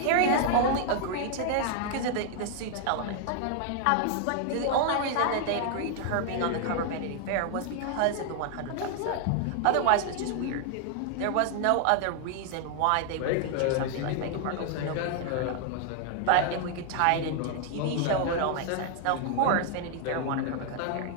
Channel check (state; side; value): different; both; correlation 0.00